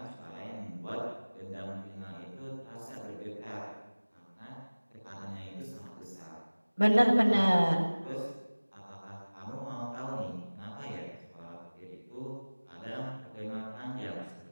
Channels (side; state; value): both; inverted; correlation -1.00